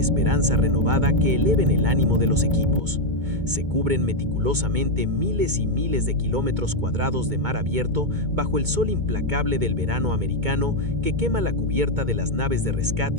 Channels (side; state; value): left; late; 2.2 ms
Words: renovada que eleven el ánimo de los equipos. Se cubren meticulosamente miles y miles de kilómetros cuadrados de mar abierto bajo el sol implacable del verano americano que quema la cubierta de las naves de